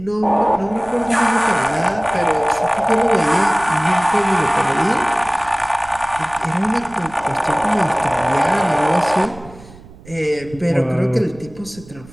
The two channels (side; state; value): right; noise; rumble, 21 dB below the sound